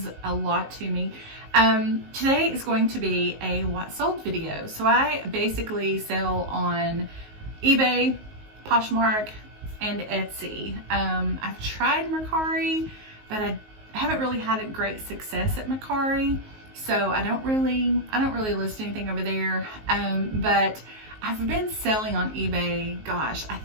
a lot to me. Today is going to be a what sold video. So I basically sell on eBay, Poshmark, and Etsy. I've tried Mercari, but I haven't really had a great success at Mercari. So I don't really list anything over there. But I've been selling on eBay, gosh, I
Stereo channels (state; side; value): late; left; 19 ms